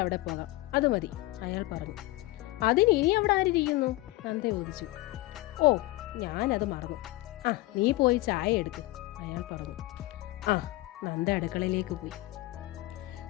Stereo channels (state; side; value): quieter; right; 19.2 dB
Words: അവിടെ പോകാം, അത് മതി, അയാൾ പറഞ്ഞു. അതിന് ഇനി അവിടെ ആരിയ്ക്കുന്നു? നന്ദ ചോദിച്ചു. ഓ, ഞാനത് മറന്നു. ആ, നീ പോയി ചായ എടുക്ക്, അയാൾ പറഞ്ഞു. ആ, നന്ദ അടുക്കളയിലേക്ക് പോയി.